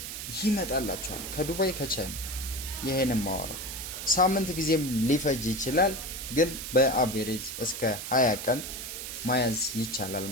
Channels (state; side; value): noise; right; hiss, 7 dB below the sound